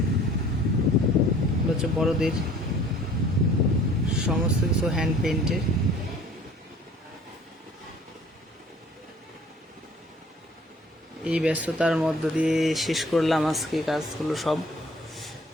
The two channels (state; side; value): normal; both; correlation 0.51